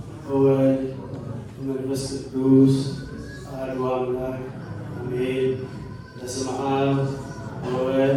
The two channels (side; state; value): both; identical; correlation 1.00